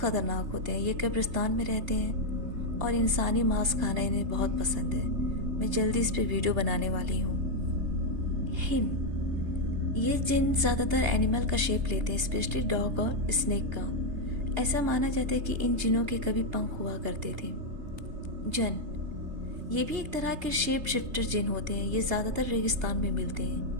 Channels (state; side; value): late; left; 3.3 ms